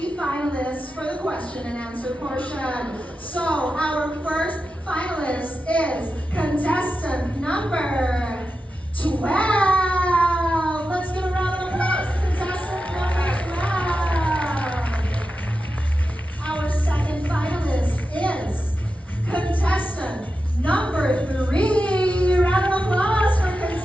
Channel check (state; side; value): normal; both; correlation 0.90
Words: finalists for the question and answer portion. So, our first finalist is contestant number 12. Let's give a round of applause to contestant number 12. Our second finalist is contestant number 3. Round of applause for